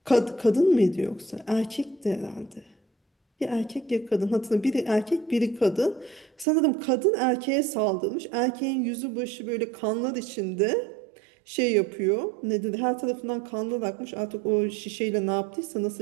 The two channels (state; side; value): drops out; left; at 6.5 s